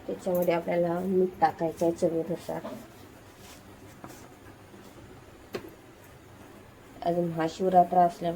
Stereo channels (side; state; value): both; identical; correlation 1.00